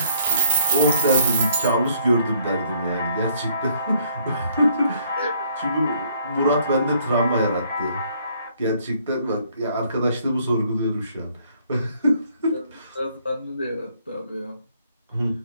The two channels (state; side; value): inverted; both; correlation -0.66